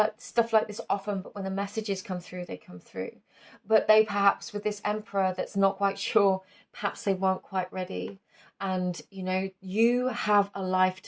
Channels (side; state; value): both; identical; correlation 1.00